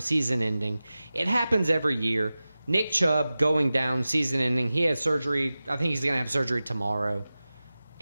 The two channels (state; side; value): inverted; both; correlation -0.96